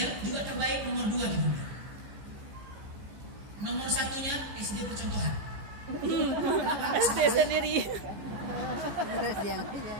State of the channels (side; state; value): left; late; 14 ms